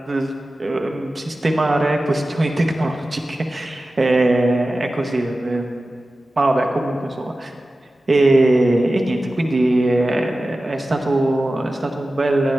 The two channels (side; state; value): both; normal; correlation 0.95